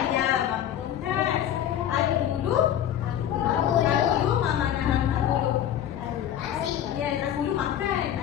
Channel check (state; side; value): quieter; right; 10.7 dB